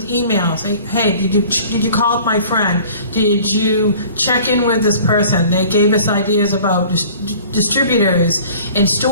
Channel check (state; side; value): inverted; both; correlation -0.48